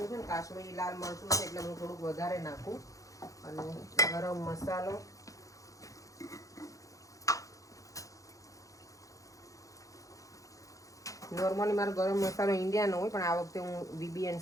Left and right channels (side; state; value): right; late; 0.16 ms